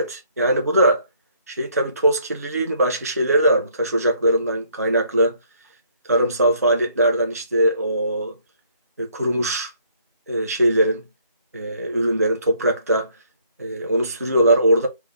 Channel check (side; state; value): both; inverted; correlation -0.66